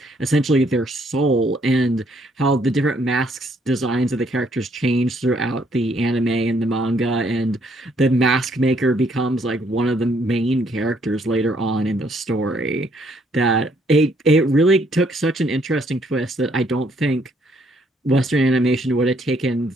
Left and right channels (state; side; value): normal; both; correlation 0.68